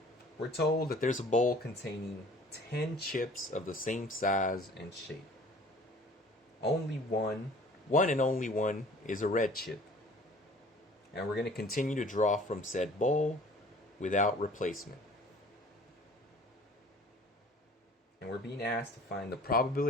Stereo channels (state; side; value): normal; both; correlation 0.49